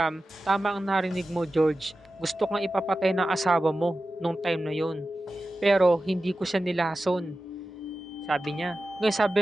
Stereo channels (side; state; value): both; normal; correlation 0.94